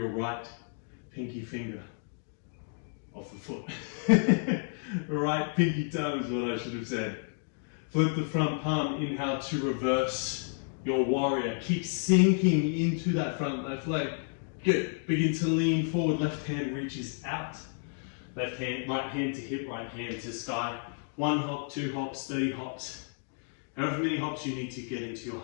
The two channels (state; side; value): silent; right; 57 dB below the other